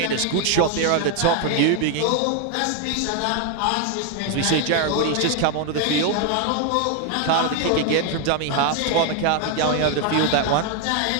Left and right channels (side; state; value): both; different; correlation 0.01